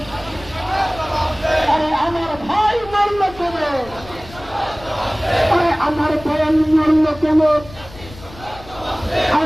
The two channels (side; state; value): left; noise; rumble, 18 dB below the sound